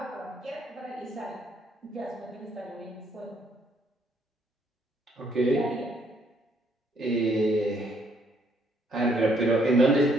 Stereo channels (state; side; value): normal; both; correlation 0.68